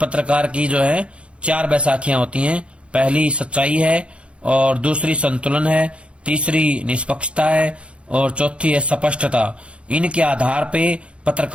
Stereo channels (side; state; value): left; late; 0.059 ms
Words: की जो है 4 बैसाखियां होती हैं। पहली सच्चाई है, और दूसरी संतुलन है, तीसरी निष्पक्षता है, और चौथी है स्पष्टता। इनके आधार पे